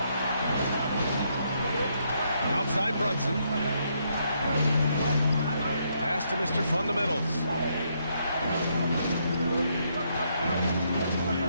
Outside Brunson. Pass to Mr. Fundamentals.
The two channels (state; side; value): inverted; both; correlation -0.75